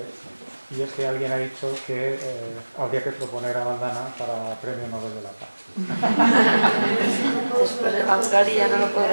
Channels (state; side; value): inverted; both; correlation -1.00